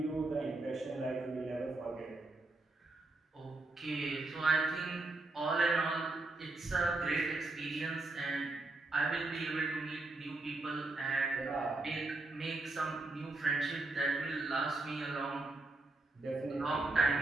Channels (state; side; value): quieter; left; 3.1 dB